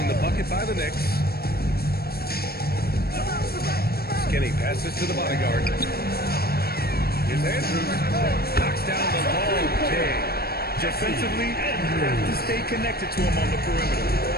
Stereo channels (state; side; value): late; right; 0.45 ms